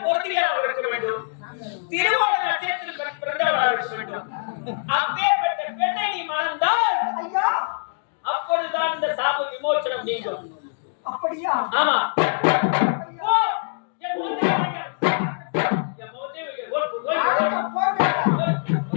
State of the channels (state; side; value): silent; right; digital silence